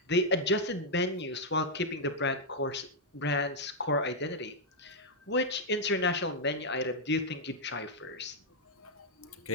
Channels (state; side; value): normal; both; correlation -0.03